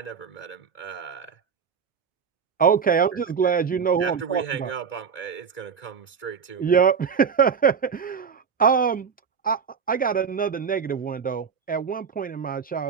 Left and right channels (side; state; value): left; quieter; 6.5 dB